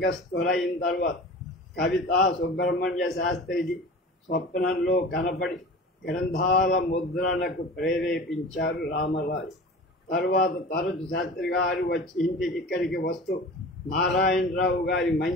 తర్వాత కవితా సుబ్రహ్మణ్య శాస్త్రిజీ స్వప్నంలో కనపడి గ్రంథాల ముద్రణకు ప్రేరేపించారు రామరాజు. తర్వాత తరచు శాస్త్రి గారు వచ్చి ఇంటికి ఇక్కడికి వస్తూ నారాయణరావు గారి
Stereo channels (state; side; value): normal; both; correlation 0.37